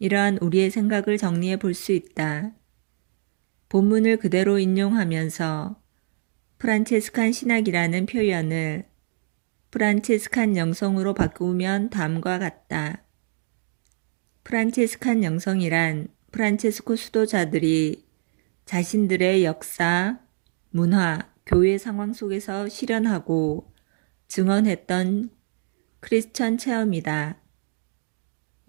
우리의 생각을 정리해 볼 수 있다. 본문을 그대로 인용하면서 프란체스칸 신학이라는 표현을 프란체스칸 영성으로 바꾸면 다음과 같다. 프란체스칸 영성이란 프란체스코 수도자들이 자신들의 역사, 문화, 교회 상황 속에서 실현하고 증언했던 크리스천 체험이다.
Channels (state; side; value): silent; left; digital silence